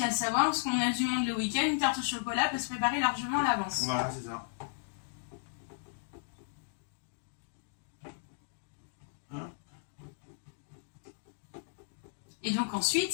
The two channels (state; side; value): silent; right; digital silence